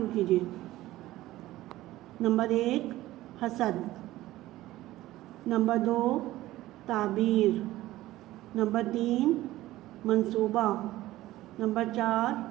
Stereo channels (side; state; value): left; quieter; 16.2 dB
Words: کیجیے۔ نمبر 1، حسد۔ نمبر 2، تعبیر۔ نمبر 3، منصوبہ۔ نمبر 4،